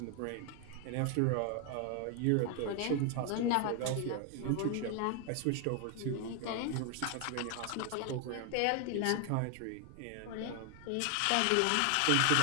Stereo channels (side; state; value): both; different; correlation 0.00